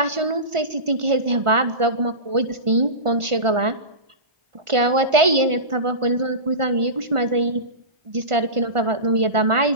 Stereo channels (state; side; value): late; left; 1.4 ms